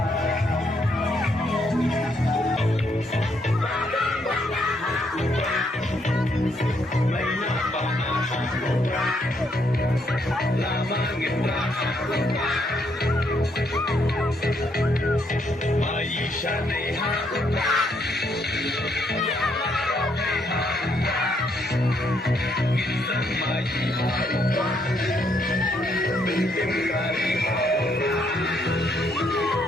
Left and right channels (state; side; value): normal; both; correlation 0.73